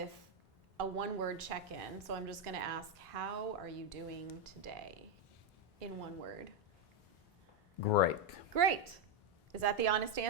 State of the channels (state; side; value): normal; both; correlation 0.04